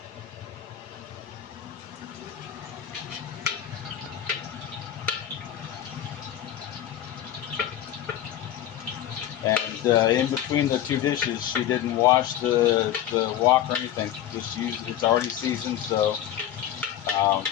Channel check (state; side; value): quieter; right; 11.3 dB